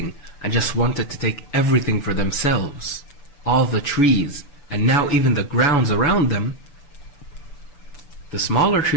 and just wanted to take everything for themselves, all the trees, and now even the grounds around them, the smaller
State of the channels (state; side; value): late; right; 6.9 ms